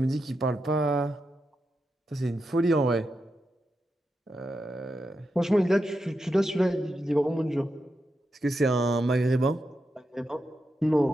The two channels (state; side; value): normal; both; correlation 0.87